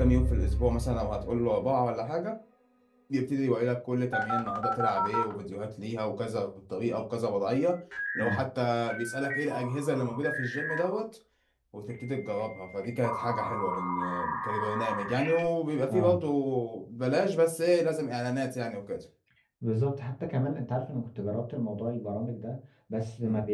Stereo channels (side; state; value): both; identical; correlation 1.00